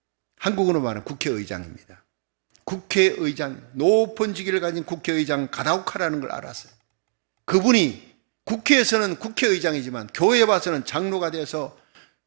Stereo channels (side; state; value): left; silent; digital silence